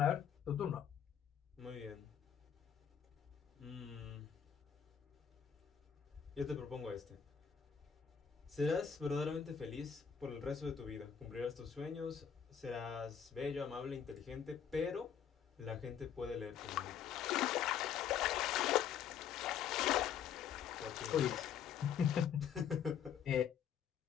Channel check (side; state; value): right; quieter; 8.2 dB